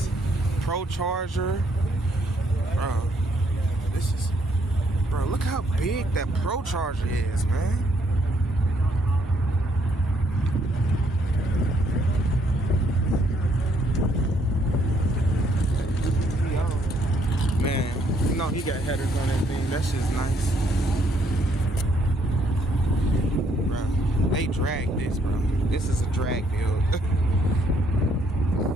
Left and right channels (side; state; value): both; normal; correlation 0.70